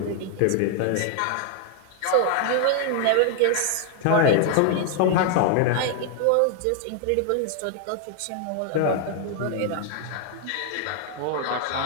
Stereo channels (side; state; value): both; different; correlation 0.00